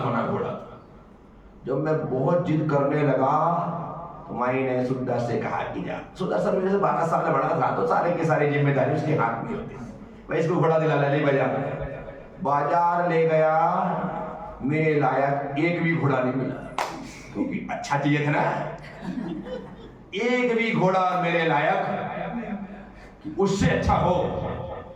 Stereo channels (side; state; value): both; identical; correlation 1.00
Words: बना घोड़ा। जब मैं बहुत जिद करने लगा तो माई ने सुंदर से कहा कि जा, सुंदर सर मेरे से 12 साल बड़ा था, तो सारे की सारी जिम्मेदारी उसके हाथ में होती, मैं इसको घोड़ा दिला ले बाजार ले गया, मेरे लायक एक भी घोड़ा नहीं मिला, क्योंकि अच्छा चाहिए था ना, एक भी घोड़ा मेरे लायक उससे अच्छा हो